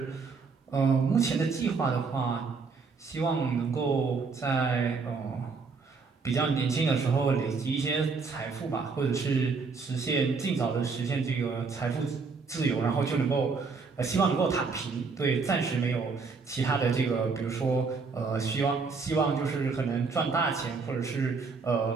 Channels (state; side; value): quieter; left; 4.7 dB